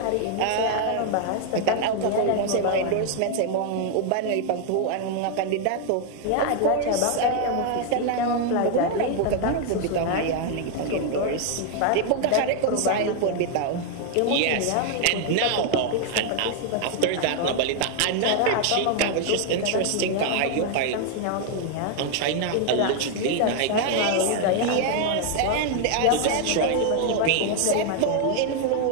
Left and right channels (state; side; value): different; both; correlation 0.00